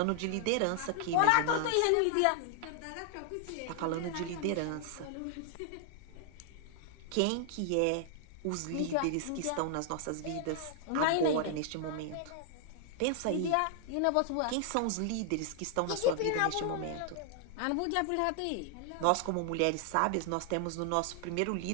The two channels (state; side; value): different; both; correlation 0.00